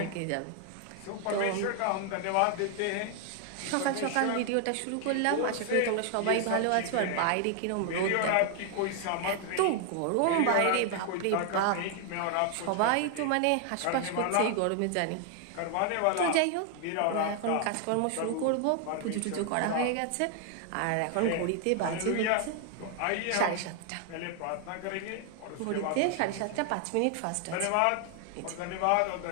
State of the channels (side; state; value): both; different; correlation 0.00